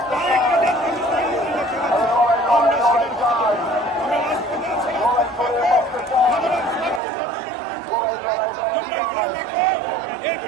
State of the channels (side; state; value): left; drops out; at 7.0 s